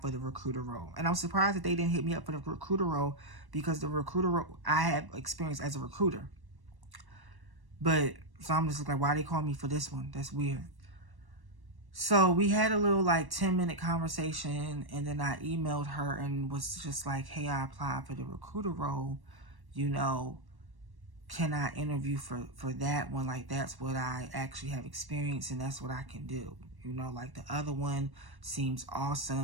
for the recruiter role. And I'm surprised that they didn't hit me up for the recruiter role, because the recruiter role, I have experience as a recruiter. But, so I'm just like, why they call me for this one? That's weird. So we had a little like 10-minute conversation, and then I emailed her and was just like, hey, I applied for the recruiter role, can I interview for that one? Like, that's what I actually have experience, and that's what I can do. Like the other one seems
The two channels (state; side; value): late; left; 1.1 ms